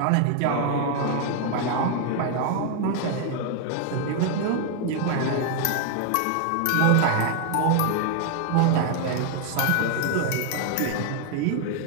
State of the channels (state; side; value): different; both; correlation 0.00